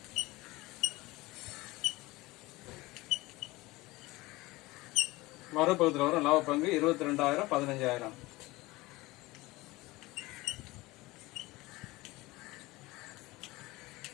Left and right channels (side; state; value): right; quieter; 20.7 dB